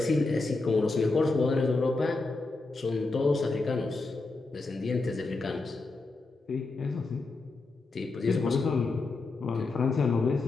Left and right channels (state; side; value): quieter; right; 3.5 dB